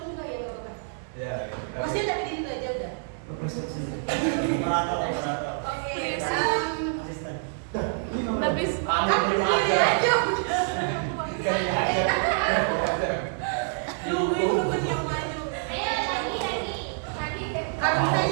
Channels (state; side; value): silent; left; digital silence